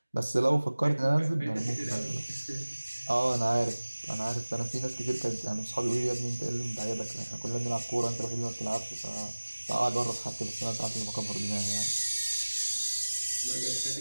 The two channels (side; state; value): both; inverted; correlation -1.00